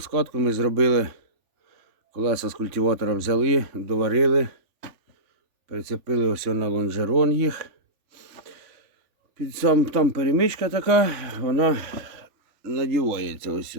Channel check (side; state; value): left; late; 3.4 ms